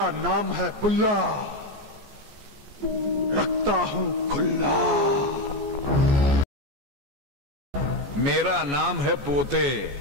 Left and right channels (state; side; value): late; left; 14 ms